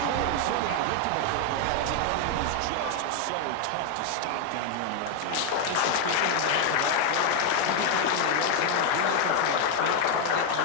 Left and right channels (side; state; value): both; different; correlation 0.01